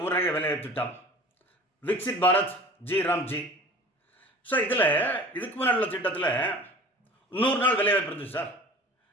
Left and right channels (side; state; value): both; normal; correlation 0.42